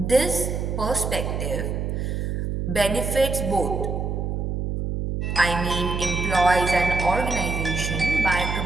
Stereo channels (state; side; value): noise; right; hum, 2 dB below the sound